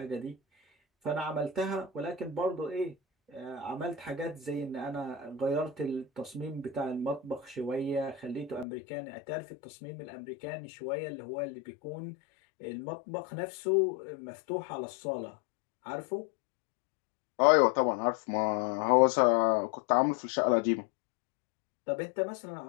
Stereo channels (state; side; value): drops out; right; at 8.7 s